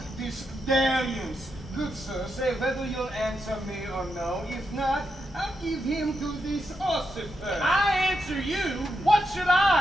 this dalliance. Good sir, say whether you'll answer me or no. If not, I'll give him to this ossifer. I answer you? What should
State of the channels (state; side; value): normal; both; correlation 0.84